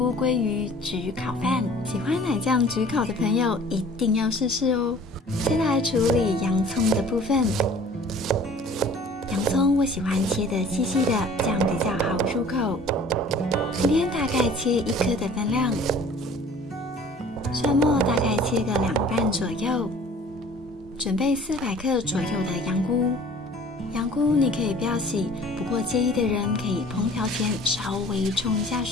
鲑鱼焗烤饭。喜欢奶酱焗烤的朋友一定要试试哦。先来处理洋葱的部分。洋葱我喜欢切得细细的，这样比较好入口。今天大概切1颗的分量，蒜末大概切个2瓣左右，准备400克左右的羊菇。羊菇你可以不要洗，不过介意的人可以烹调前稍微冲一下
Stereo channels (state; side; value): normal; both; correlation 0.49